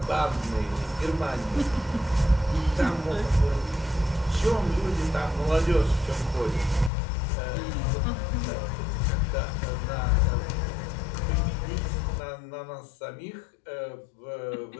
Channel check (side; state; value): right; drops out; at 6.9 s